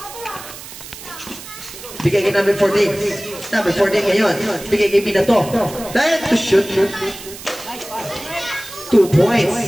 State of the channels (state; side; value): noise; right; hiss, 14 dB below the sound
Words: Bigay kay number 14. Number 14 ngayon. Bigay kay Binato. Dahil to shoot. 2